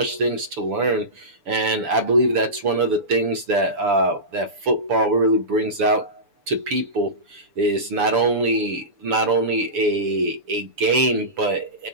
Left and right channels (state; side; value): late; left; 6.9 ms